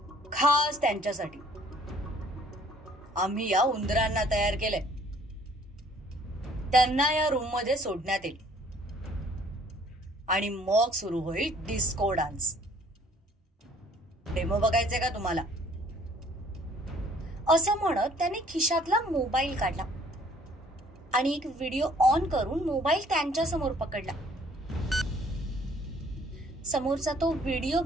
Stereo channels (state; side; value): normal; both; correlation 0.58